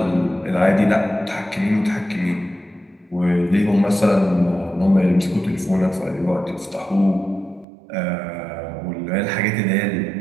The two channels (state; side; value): drops out; left; at 7.7 s